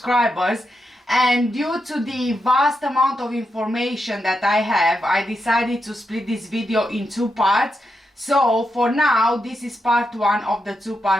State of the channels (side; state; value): both; normal; correlation 0.85